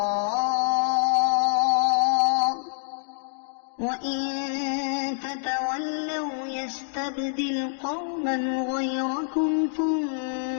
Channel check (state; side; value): silent; right; digital silence